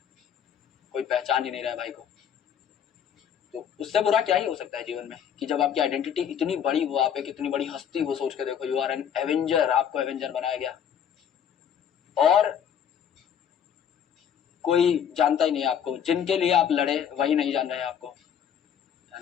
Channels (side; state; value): right; quieter; 8.6 dB